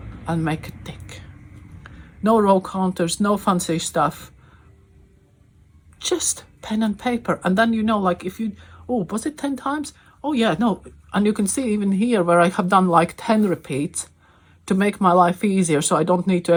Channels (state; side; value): identical; both; correlation 1.00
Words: and make a tick. No row counters, no fancy stuff, just pen and paper. And then, you know, like if you, oh, was it 10 times? Oh yeah, no. And you can see even here where I have done like 10 repeats to make my life easier, so I don't need to